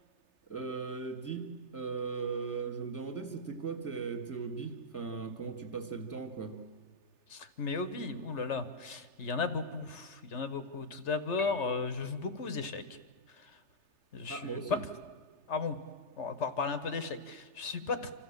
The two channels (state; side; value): late; right; 3.3 ms